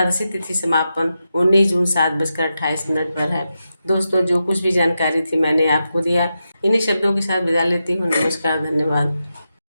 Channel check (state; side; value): inverted; both; correlation -0.88